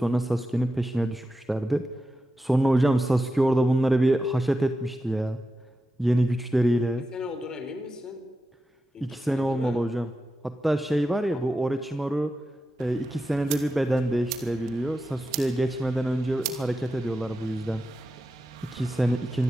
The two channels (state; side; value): normal; both; correlation 0.91